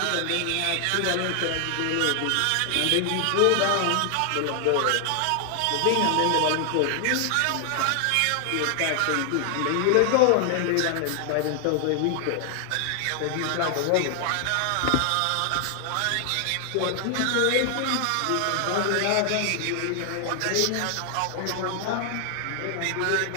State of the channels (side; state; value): both; different; correlation 0.00